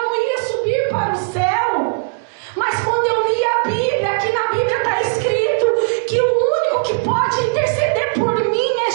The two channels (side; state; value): left; silent; digital silence